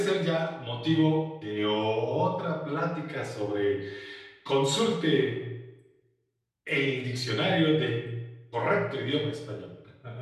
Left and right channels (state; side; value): identical; both; correlation 1.00